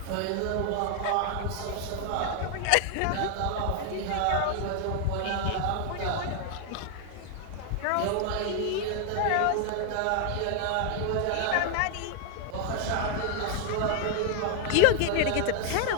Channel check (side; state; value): both; different; correlation 0.00